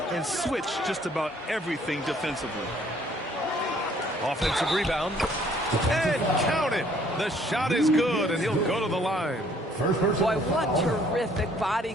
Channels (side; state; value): both; normal; correlation 0.61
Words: and switch just about everything defensively. Offensive rebound. And count it. The shot is good, and he'll go to the line. Boy, what terrific body